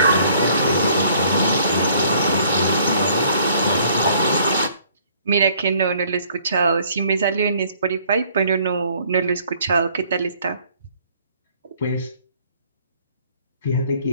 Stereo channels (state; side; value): inverted; both; correlation -0.60